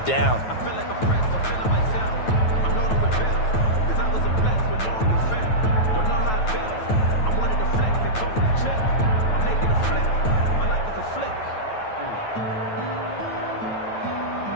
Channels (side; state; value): right; late; 9.2 ms